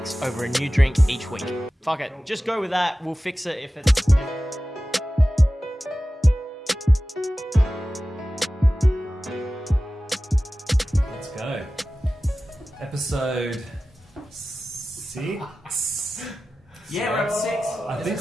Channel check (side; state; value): both; normal; correlation 0.95